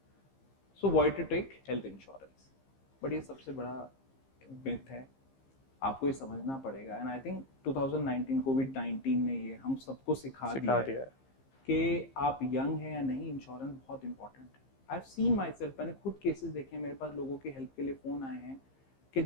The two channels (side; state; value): right; late; 15 ms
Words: so why to take health insurance। But ये सबसे बड़ा myth है, आपको ये समझना पड़ेगा। एंड आई थिंक 2019 कोविड-19 ने ये हम सबको सिखा दिया है कि आप यंग हैं या नहीं, इंश्योरेंस बहुत इंपॉर्टेंट है। I have seen my self, मैंने खुद केसेस देखे हैं, मेरे पास लोगों के हेल्प के लिए फ़ोन आए हैं कि